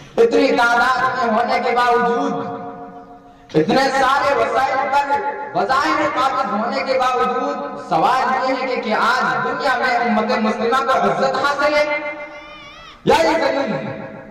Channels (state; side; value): identical; both; correlation 1.00